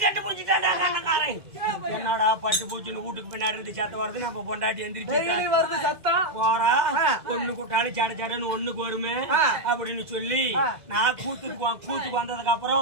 கட்டு பூச்சிட்டான் அண்ணக்காரன் என்னடா பட்டு பூச்சின்னு வீட்டுக்கு பின்னாடி இருந்து சத்தம் வருது நம்ம பொண்டாட்டி எந்திரிச்சு போறா ஒண்ணு கூட்டாலும் சட சடன்னு ஒண்ணுக்கு வருமே அப்படின்னு சொல்லி நான் கூத்துக்கு வந்ததுக்கு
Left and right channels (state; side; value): late; left; 2.0 ms